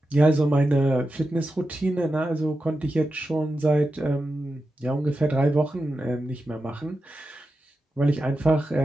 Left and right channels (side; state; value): both; normal; correlation 0.90